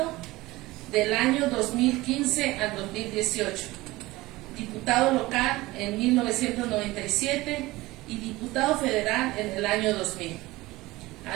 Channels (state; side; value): quieter; left; 19.5 dB